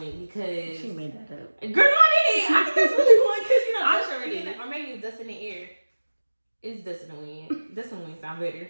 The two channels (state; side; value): inverted; both; correlation -1.00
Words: because she made that up. Girl, no, I didn't. I think that's really fun, because, you know, I'm sure it is. Or maybe it's dust in the air. It's dust in the wind. Dust in the wind sound better.